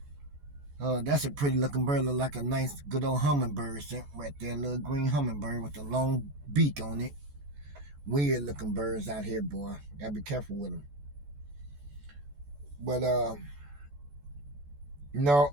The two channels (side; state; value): left; late; 14 ms